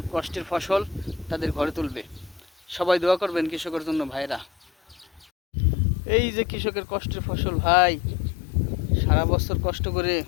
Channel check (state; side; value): drops out; right; at 5.2 s